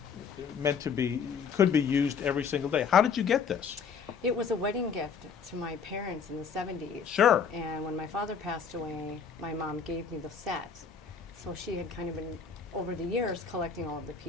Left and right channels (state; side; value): quieter; right; 6.2 dB